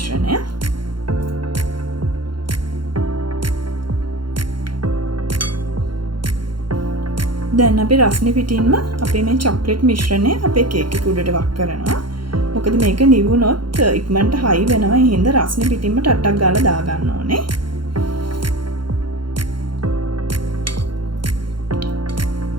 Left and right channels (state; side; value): late; left; 0.73 ms